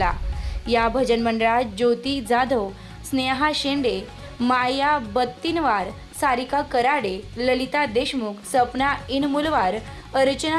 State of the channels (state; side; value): identical; both; correlation 1.00